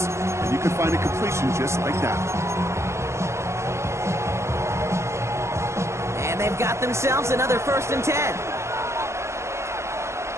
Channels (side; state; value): left; late; 0.13 ms